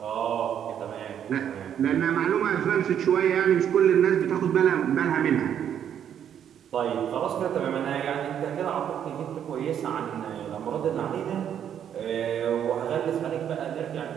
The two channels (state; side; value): quieter; left; 9.2 dB